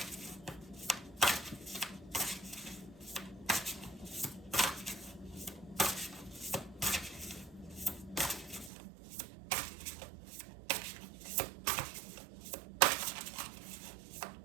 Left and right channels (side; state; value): left; drops out; at 8.7 s